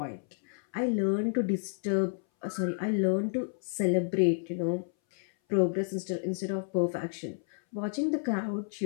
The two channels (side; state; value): right; silent; 58 dB below the other